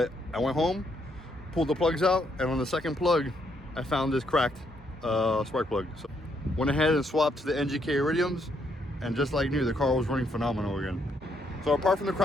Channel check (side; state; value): both; normal; correlation 0.74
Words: I went home, pulled the plugs out, and on the second plug I found this cracked spark plug. So Went ahead and swapped to the NGK Iridiums, and just like new, the car was running phenomenal again. So apart from the